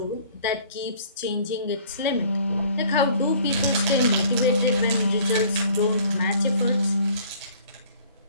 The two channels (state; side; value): inverted; both; correlation -0.53